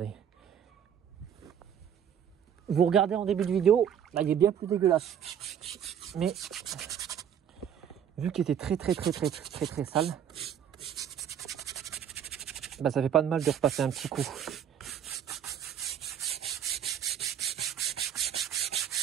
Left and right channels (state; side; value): quieter; left; 9.0 dB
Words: Vous regardez en début de vidéo, là il est bien plus dégueulasse. Mais vu qu'il était très sale, bah ça fait pas de mal de repasser un petit coup.